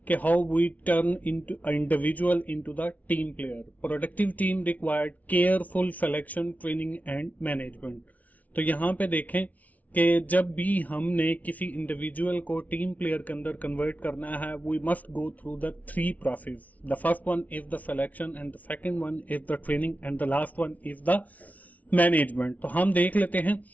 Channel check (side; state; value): right; late; 0.072 ms